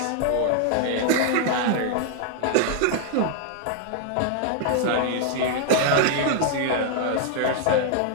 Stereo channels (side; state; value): both; different; correlation 0.00